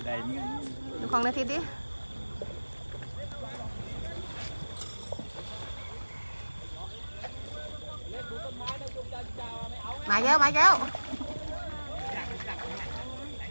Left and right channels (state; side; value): inverted; both; correlation -1.00